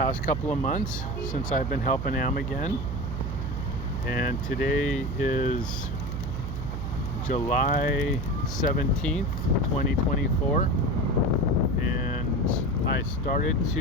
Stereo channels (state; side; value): noise; right; hum, 4 dB below the sound